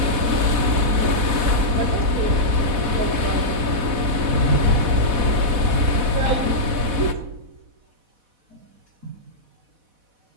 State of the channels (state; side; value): late; left; 4.1 ms